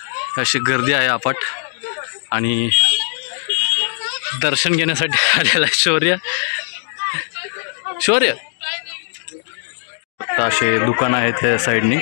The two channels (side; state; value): right; silent; digital silence